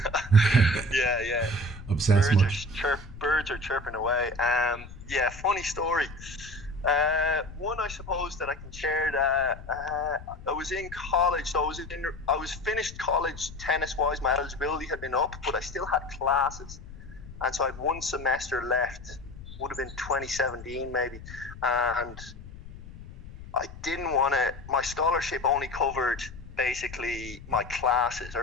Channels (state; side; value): noise; left; rumble, 15 dB below the sound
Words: Yeah. Obsessed much? Birds are chirping away. Funny story. One I suppose that I can share. I was in college, so I was finished college tennis wise. My eligibility had been up, but I still had classes, and so I had 1 semester left. Would have been 2017 maybe, and I didn't want to. My scholarship only covered basically my classes